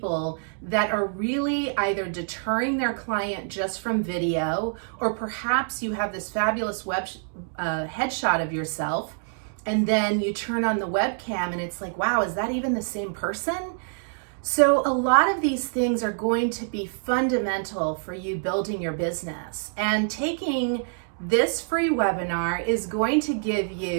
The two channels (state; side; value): silent; left; digital silence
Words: that are really either deterring their client just from video, or perhaps you have this fabulous headshot of yourself, and then you turn on the webcam and it's like, wow, is that even the same person? So a lot of these things are going to be fundamental for you building your business. And taking this free webinar is going to give